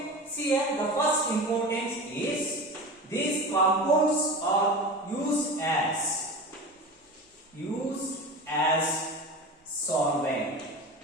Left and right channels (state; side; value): normal; both; correlation 0.30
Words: See here, the first importance is these compounds are used as solvent.